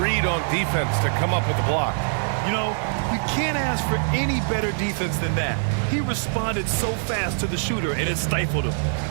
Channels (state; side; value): silent; left; digital silence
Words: on defense to come up with the block. You know, you can't ask for any better defense than that. He responded so fast to the shooter, and it stifled him.